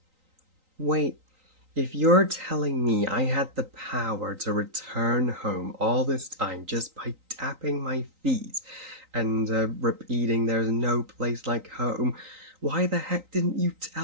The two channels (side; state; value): left; late; 3.9 ms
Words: Wait, if you're telling me I had the power to return home all this time just by tapping my feet and repeating there's no place like home, why the heck didn't you